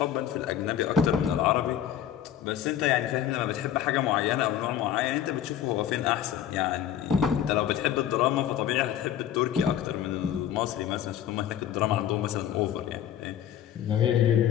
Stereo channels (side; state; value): right; quieter; 10.4 dB